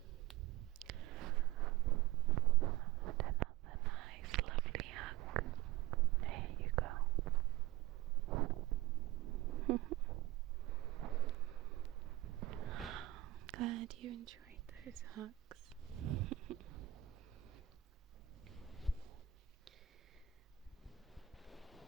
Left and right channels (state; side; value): quieter; left; 15.3 dB